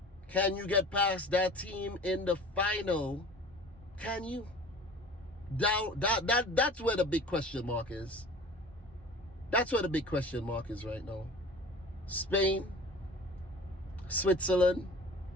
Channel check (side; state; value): both; normal; correlation 0.42